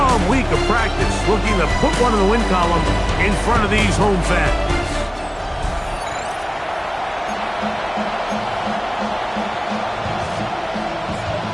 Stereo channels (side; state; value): both; identical; correlation 1.00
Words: week of practice, looking to put one in the win column in front of these home fans.